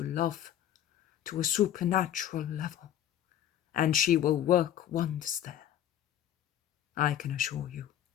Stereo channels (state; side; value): quieter; right; 11.2 dB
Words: love to a supernatural level, and she will work wonders there. I can assure you,